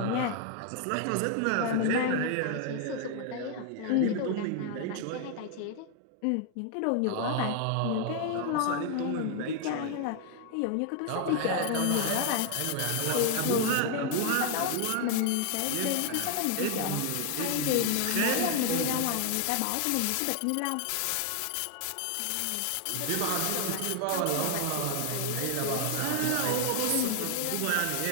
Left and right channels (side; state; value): both; different; correlation 0.00